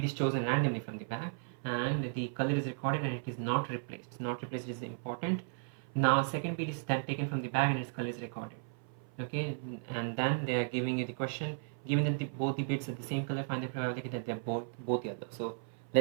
is chosen randomly from the bag, and the color is recorded and it is not replaced. Not replaced is important. Now second bead is then taken from the bag and its color is recorded. Okay, and then they are giving you the question, given that both the beads are the same color, find the probability that they're both yellow. So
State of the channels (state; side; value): silent; left; 54 dB below the other